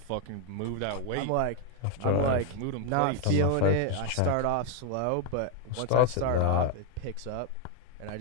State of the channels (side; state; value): both; different; correlation 0.01